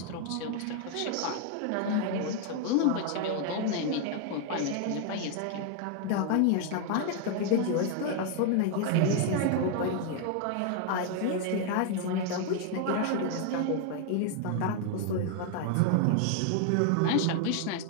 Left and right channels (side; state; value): both; different; correlation 0.00